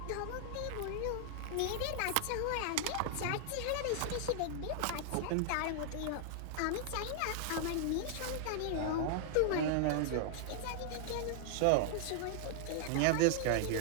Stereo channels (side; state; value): both; different; correlation 0.00